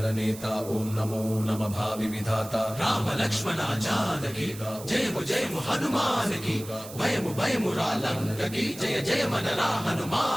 नेता ओम नमो नम भावि विधाता राम लक्ष्मण जानकी जय हनुमान की भयमु भयमु रालंक की जय जय मनरा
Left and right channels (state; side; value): noise; right; hiss, 15 dB below the sound